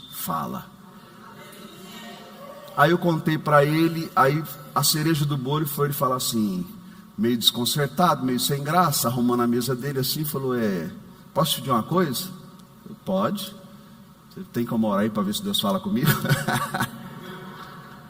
fala. Aí eu contei para ele, aí a cereja do bolo foi ele falar assim, meio desconcertado, meio sem graça, arrumando a mesa dele assim, falou, posso te pedir uma coisa? Eu, pode. Você tem como orar aí para ver se Deus fala comigo?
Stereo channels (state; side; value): identical; both; correlation 1.00